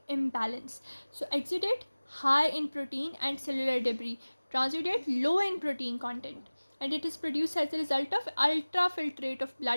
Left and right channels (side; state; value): both; inverted; correlation -1.00